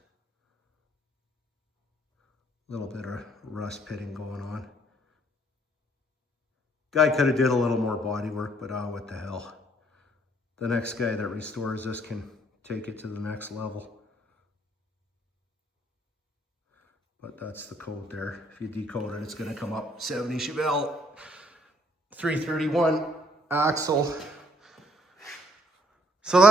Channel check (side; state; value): both; normal; correlation 0.65